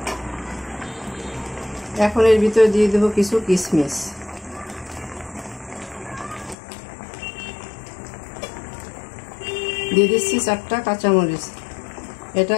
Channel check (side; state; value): right; drops out; at 6.6 s